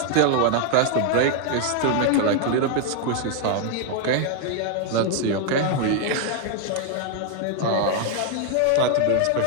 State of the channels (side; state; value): both; different; correlation 0.00